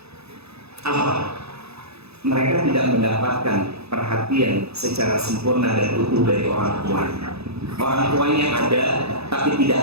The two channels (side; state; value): left; late; 0.79 ms